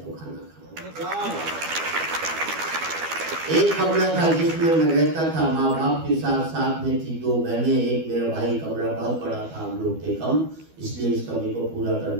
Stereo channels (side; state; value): left; late; 12 ms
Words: खाना खाऊं। एक कमरा था जिसमें मैं रहता था माँ बाप के साथ। साथ में थी 2 बहनें, एक मेरा भाई। कमरा बहुत बड़ा था, हम लोग थे कम, इसलिए इस कमी को पूरा